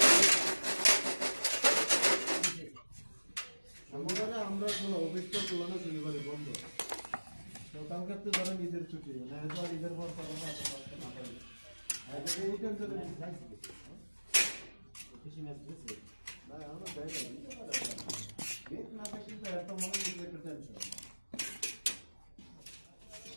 আমরা কোনো অফিসটা তুলনা শনিবারে বন্ধ তো কালকে তো ধরেন ঈদের ছুটি না তো ঈদের পর পাবো না না পারবে এই টেনশনে খুশি ম্যাচ দিছে না আমরা যাই না গেট না থাকলে তো এত মনে হচ্ছে একটা টেনশন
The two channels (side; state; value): both; inverted; correlation -1.00